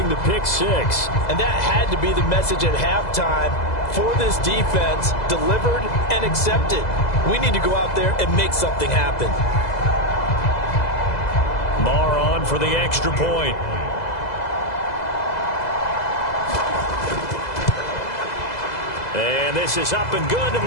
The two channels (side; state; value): right; late; 2.0 ms